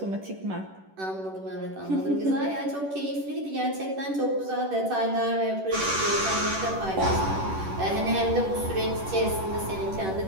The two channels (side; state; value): left; late; 11 ms